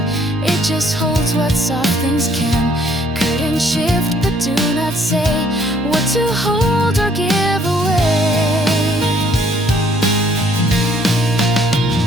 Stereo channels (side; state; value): both; normal; correlation 0.63